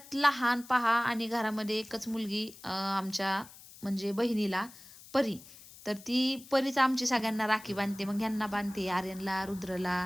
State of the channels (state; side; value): noise; left; hiss, 19 dB below the sound